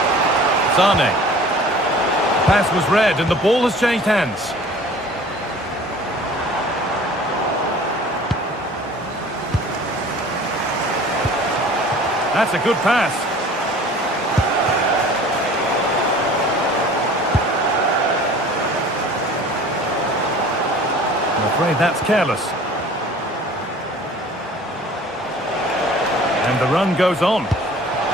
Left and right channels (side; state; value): both; normal; correlation 0.46